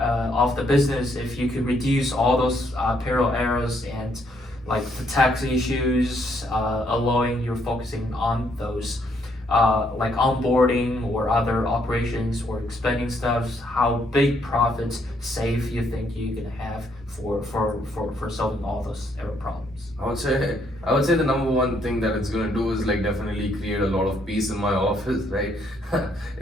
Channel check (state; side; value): normal; both; correlation 0.71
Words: the business if you could reduce all those payroll errors and like the tax issues, allowing you focusing on those like onboarding or other operations or expanding stuff, how big profits save you think you're gonna have for solving all those error problems? I would say the number one thing that it's gonna do is like definitely create a lot of peace in my office, right?